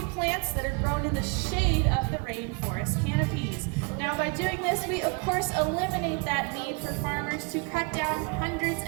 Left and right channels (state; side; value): quieter; left; 31.8 dB